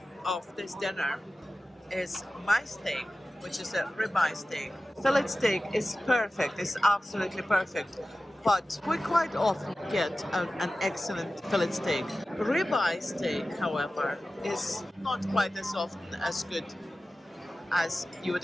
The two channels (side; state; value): both; normal; correlation 0.95